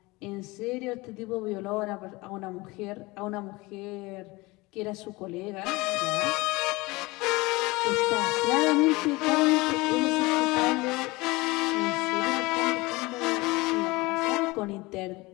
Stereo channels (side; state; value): right; quieter; 22.8 dB